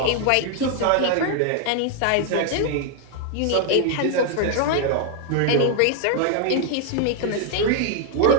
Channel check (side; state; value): both; different; correlation 0.00